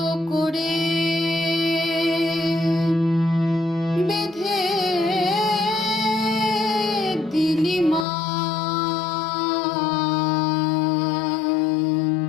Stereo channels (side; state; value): right; drops out; at 8.1 s